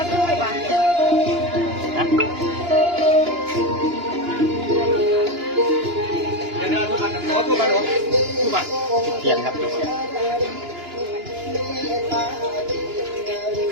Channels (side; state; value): left; late; 2.9 ms